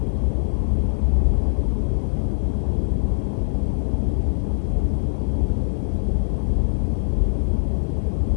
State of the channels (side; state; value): right; silent; 64 dB below the other